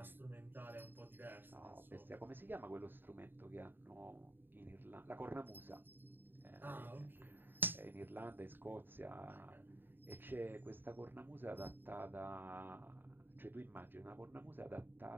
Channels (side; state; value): left; late; 0.095 ms